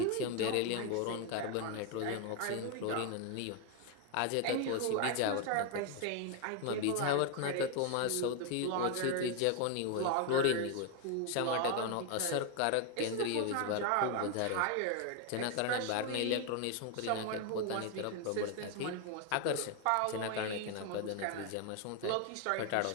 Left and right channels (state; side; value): different; both; correlation 0.01